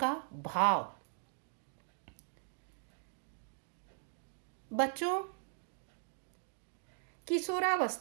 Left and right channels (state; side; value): silent; left; 52 dB below the other